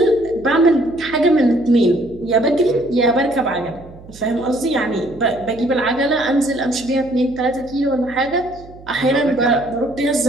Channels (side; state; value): right; noise; hum, 20 dB below the sound